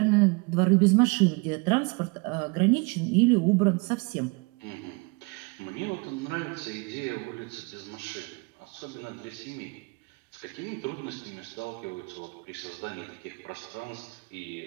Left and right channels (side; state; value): left; quieter; 29.3 dB